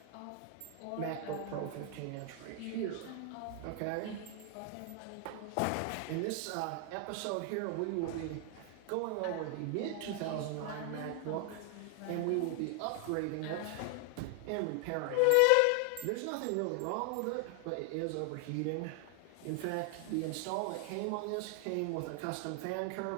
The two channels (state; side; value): different; both; correlation 0.00